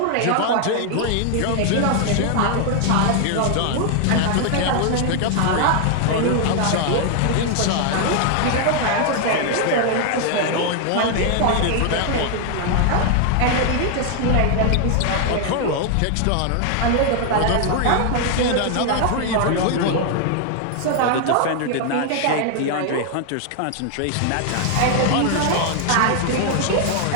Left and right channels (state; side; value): different; both; correlation 0.00